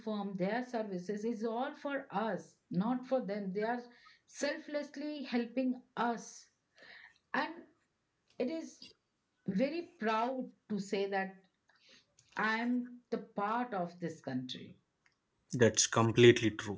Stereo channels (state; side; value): identical; both; correlation 1.00